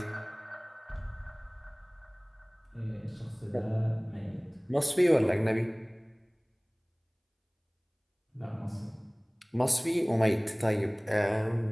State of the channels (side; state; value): both; identical; correlation 1.00